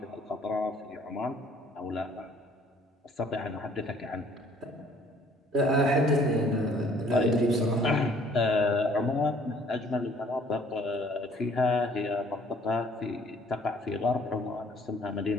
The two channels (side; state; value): both; normal; correlation 0.58